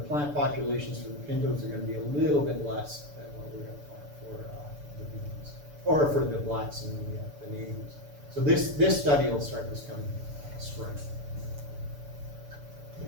plant populations for the pintos are going to be a little bit less than what we're going to plant for the beans, or for the blacks and the navies. So this study will start this coming spring.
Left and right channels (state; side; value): late; left; 6.9 ms